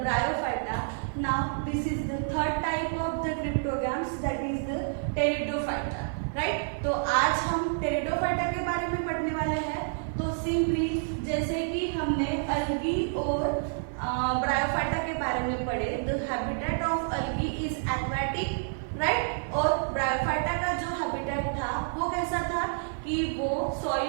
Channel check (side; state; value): left; silent; digital silence